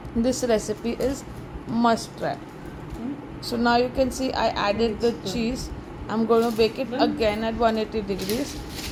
This recipe is must try. So now you can see I added the cheese. I'm going to bake it again at 180 degrees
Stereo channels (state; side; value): identical; both; correlation 1.00